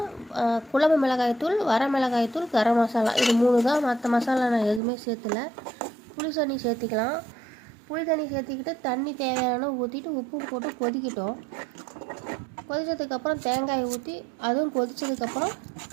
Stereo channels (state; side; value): drops out; left; at 4.8 s